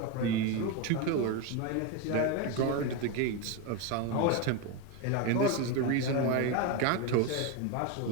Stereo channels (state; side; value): different; both; correlation 0.03